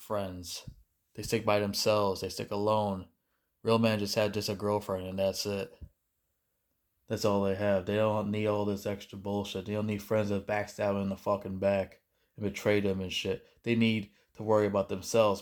They stick by themselves. They stick alone. Real men just have just a girlfriend and that's it. That's all they have. They don't need all this extra bullshit. They don't need friends that backstab them in the fucking back and betray them and shit. They need to worry about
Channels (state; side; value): identical; both; correlation 1.00